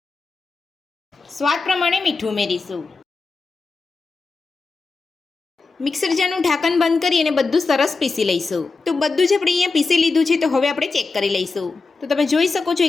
સ્વાદ પ્રમાણે મીઠું ઉમેરીશું। મિક્સર જારનું ઢાંકણ બંધ કરી અને બધું સરસ પીસી લઈશું। તો બધું જ આપણે અહીંયા પીસી લીધું છે। તો હવે આપણે ચેક કરી લઈશું। તો તમે જોઈ શકો છો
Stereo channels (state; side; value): quieter; right; 4.1 dB